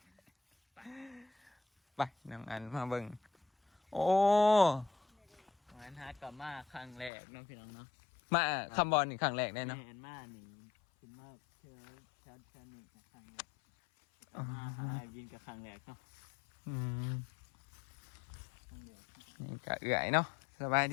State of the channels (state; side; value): drops out; right; at 7.1 s